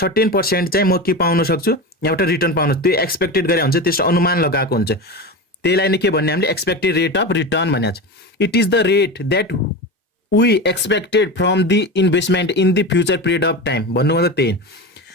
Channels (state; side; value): normal; both; correlation 0.24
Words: % चाहिँ म के पाउन सक्छु एउटा रिटर्न पाउनु, त्यो एक्सपेक्टेड गरे हुन्छ, त्यसको अनुमान लगाएको हुन्छ। त्यसलाई नै के भन्ने हामीले एक्सपेक्टेड रेट अफ रिटर्न भनेको छ। It is the rate that we expected from the investment in the future period of time. भन्नु मतलब त्यही